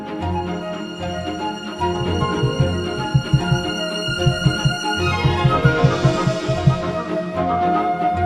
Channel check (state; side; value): identical; both; correlation 1.00